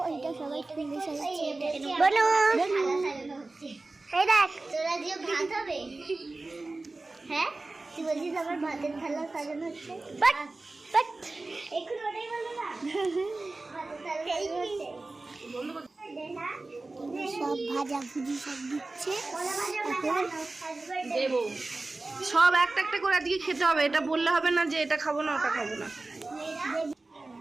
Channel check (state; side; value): quieter; left; 3.2 dB